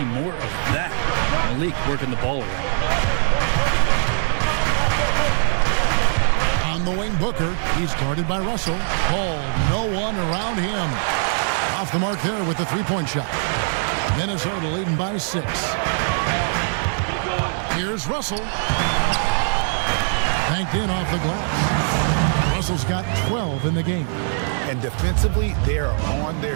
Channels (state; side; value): silent; left; digital silence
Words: more of that. Malik working the ball around. On the wing, Booker. He's guarded by Russell. Hold. No one around him. Off the mark there with the three-point shot. Minnesota leading by 6. Here's Russell. Banked in off the glass. Russell's got 12 in the game. And defensively, they are on their